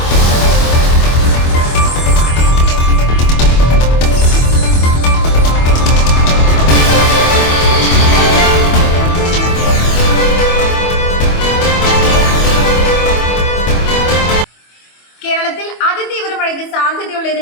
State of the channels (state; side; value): late; right; 25 ms